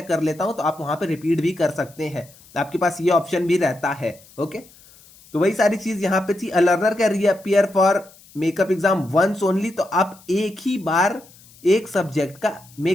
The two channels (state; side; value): noise; left; hiss, 25 dB below the sound